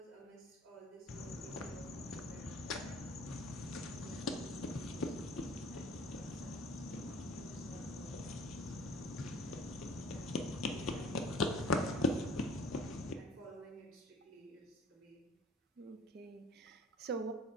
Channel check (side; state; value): both; normal; correlation 0.51